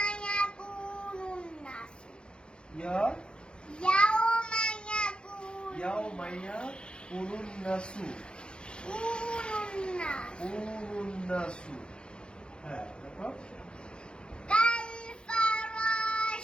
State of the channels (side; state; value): right; late; 0.052 ms